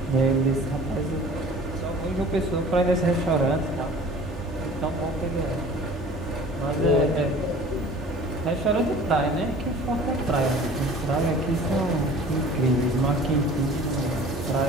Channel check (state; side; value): normal; both; correlation 0.46